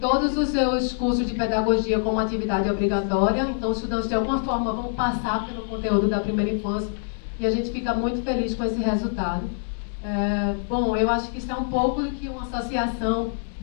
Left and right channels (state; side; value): silent; right; digital silence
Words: os seus cursos de pedagogia como atividade obrigatória, então os estudantes de alguma forma vão passar pelo conteúdo da primeira infância, e a gente fica muito feliz com esse resultado. Bom, eu acho que isso é um pouco do que uma associação